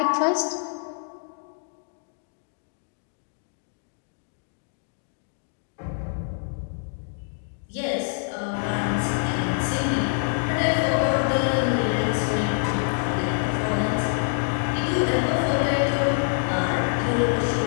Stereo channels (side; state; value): right; silent; digital silence